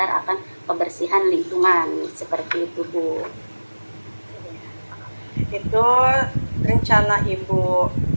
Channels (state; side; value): inverted; both; correlation -1.00